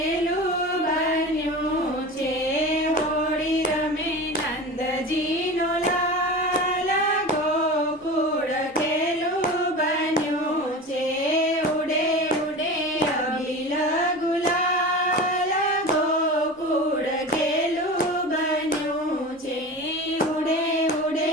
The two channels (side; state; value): both; normal; correlation 0.31